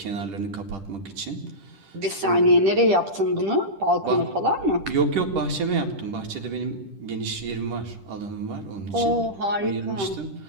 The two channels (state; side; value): late; left; 10 ms